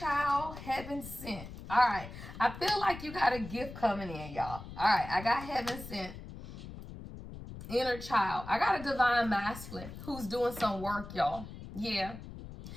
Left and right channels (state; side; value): noise; left; rumble, 12 dB below the sound